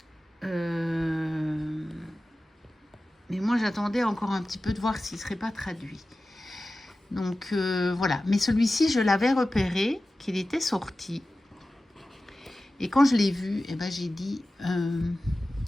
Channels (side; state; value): both; normal; correlation 0.95